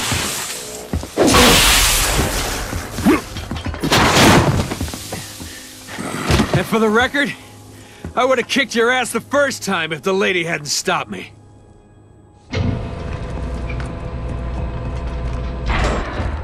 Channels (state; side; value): identical; both; correlation 1.00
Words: And for the record, I would have kicked your ass the first time if the lady hadn't stopped me.